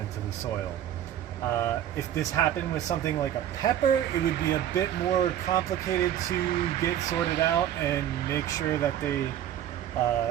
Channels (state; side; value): quieter; left; 11.1 dB